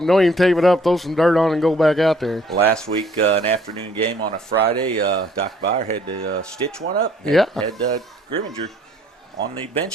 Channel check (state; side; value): normal; both; correlation 0.60